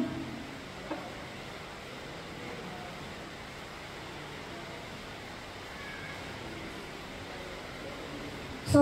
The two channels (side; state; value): both; identical; correlation 1.00